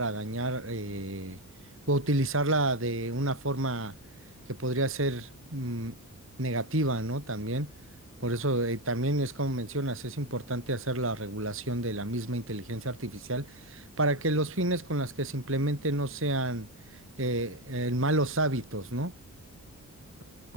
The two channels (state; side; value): noise; right; hum, 28 dB below the sound